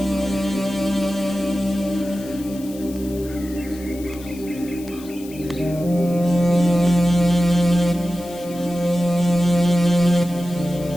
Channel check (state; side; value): noise; left; hiss, 19 dB below the sound